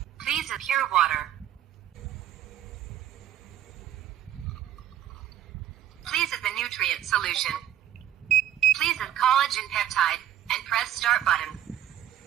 Please add pure water. Please add the nutrient solution. Please add collagen peptide and press start button.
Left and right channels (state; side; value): quieter; left; 11.5 dB